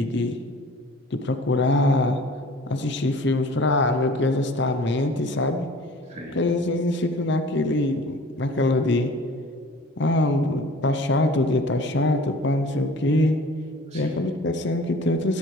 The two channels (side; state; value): both; normal; correlation 0.46